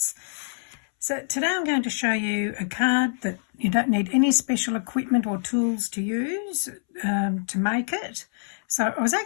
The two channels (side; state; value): right; silent; 62 dB below the other